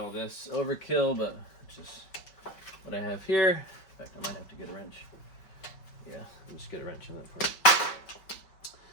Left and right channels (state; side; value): late; right; 5.2 ms